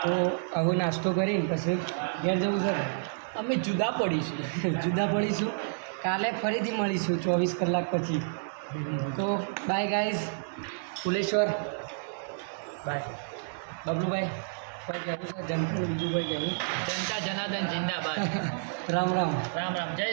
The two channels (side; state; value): left; silent; digital silence